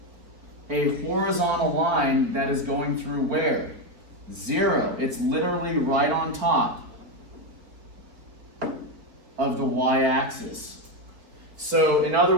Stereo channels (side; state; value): left; late; 4.0 ms